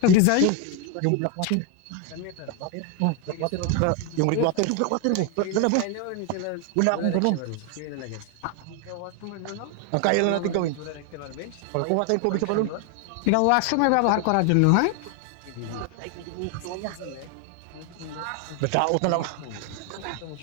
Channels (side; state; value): both; different; correlation 0.01